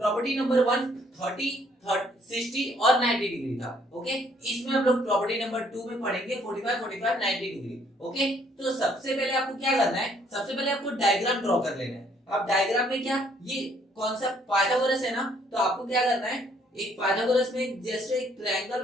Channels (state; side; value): normal; both; correlation 0.65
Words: नंबर 1 30 60 और 90 डिग्री था। ओके, इसमें हम लोग प्रॉपर्टी नंबर 2 में पढ़ेंगे 45 90 डिग्री। ओके, तो सबसे पहले आपको क्या करना है, सबसे पहले आपको डायग्राम ड्रॉ कर लेना है। अब डायग्राम में क्या, ये कौन सा पाइथागोरस है ना, तो आपको क्या करना है, एक पाइथागोरस में जैसे एक ट्रायंगल